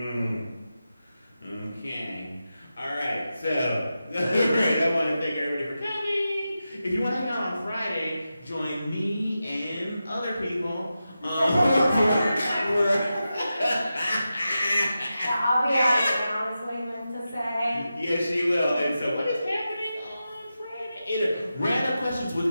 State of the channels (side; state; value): both; inverted; correlation -0.91